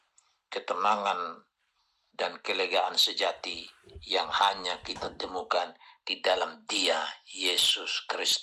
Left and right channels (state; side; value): identical; both; correlation 1.00